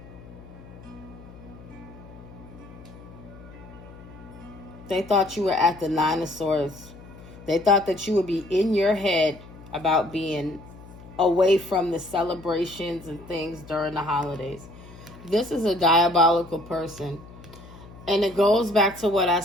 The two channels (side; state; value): left; noise; hum, 18 dB below the sound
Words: They thought you were at the 9 of Swords. They thought that you would be in your head about being away from the celebrations and things during the holidays. This is a diabolical person. And it goes back to what I